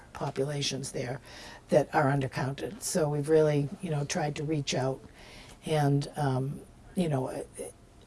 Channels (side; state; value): both; identical; correlation 1.00